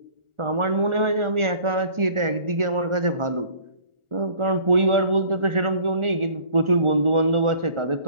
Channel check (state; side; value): late; left; 1.4 ms